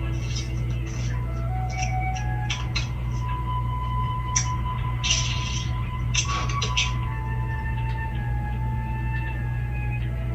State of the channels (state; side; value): identical; both; correlation 1.00